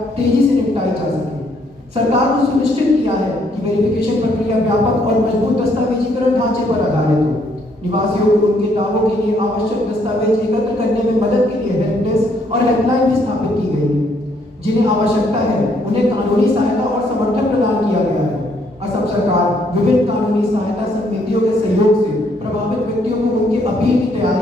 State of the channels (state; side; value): normal; both; correlation 0.69